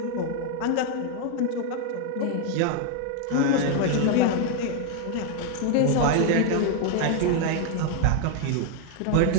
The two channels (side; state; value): both; different; correlation 0.00